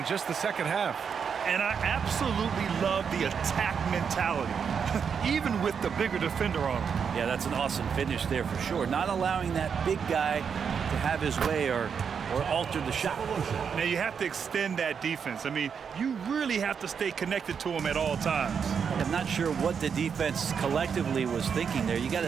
just the second half. And I absolutely love the attack mentality, even with the bigger defender on him. Yeah, that's an awesome finish there for sure. Not allowing that big guy to have his way or alter the shot. Now you have to extend that defense. I mean, you really have to stay connected to him at all times. I'm not sure what the defense collectively was thinking there. You got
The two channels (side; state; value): left; quieter; 6.7 dB